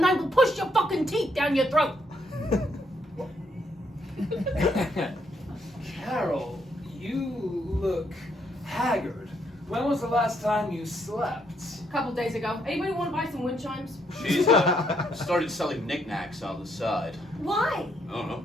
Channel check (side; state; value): both; normal; correlation 0.73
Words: I will push your fucking teeth down your throat. Carol, you look haggard. When was the last time you slept? A couple days ago. Anybody want to buy some wind chimes? She's started selling knickknacks on the side. Why? I don't know,